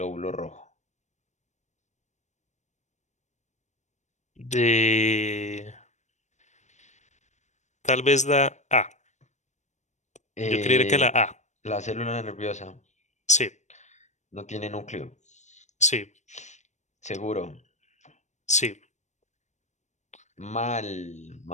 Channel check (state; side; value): late; right; 0.34 ms